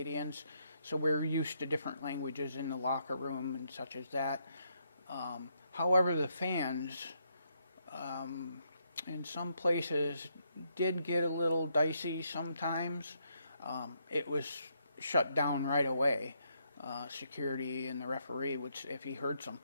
so we're used to different languages in the locker room and such as that. However, the fans in some places did get a little dicey sometimes. It was shut down right away. Security and the referee would, if he heard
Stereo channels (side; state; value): both; inverted; correlation -0.76